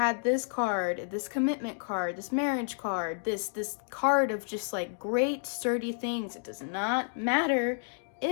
this card, this commitment card, this marriage card, this card of just like great sturdy things. It does not matter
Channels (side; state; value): right; silent; digital silence